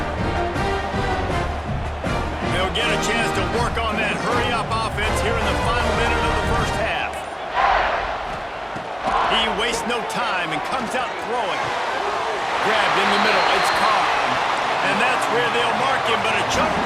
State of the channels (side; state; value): both; identical; correlation 1.00